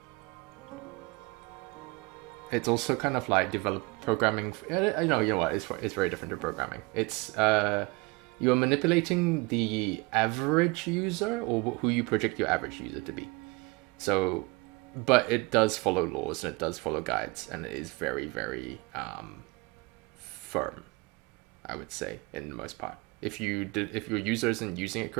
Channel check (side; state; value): left; quieter; 25.4 dB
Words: It's also kind of like programming. You know what? It's very different to programming. It's you're manipulating the average user, or who you project your average user to be. So, but it does follow laws and it does follow guides, and it is very, very firm, I would say, in the most part. If your user isn't using it